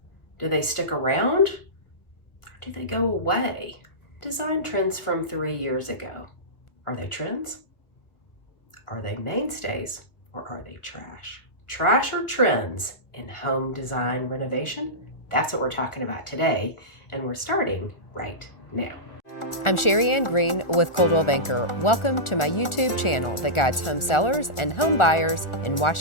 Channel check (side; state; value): right; late; 1.4 ms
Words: Do they stick around or do they go away? Design trends from 3 years ago. Are they trends? Are they mainstays or are they trash? Trash or trends in home design renovation? That's what we're talking about today, and we're starting right now. I'm Sherri Ann Green with Coldwell Banker. Welcome to my YouTube channel that guides home sellers and home buyers in